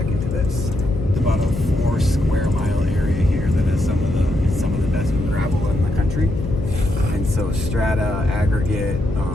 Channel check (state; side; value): noise; left; hum, 7 dB below the sound